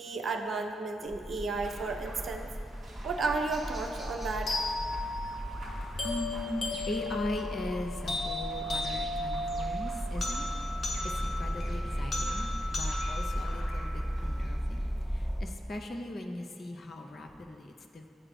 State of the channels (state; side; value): normal; both; correlation 0.82